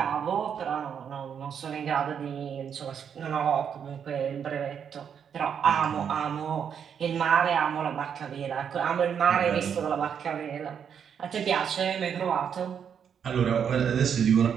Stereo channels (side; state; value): left; quieter; 7.7 dB